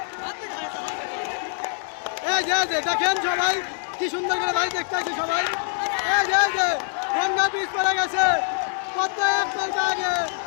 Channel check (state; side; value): silent; right; digital silence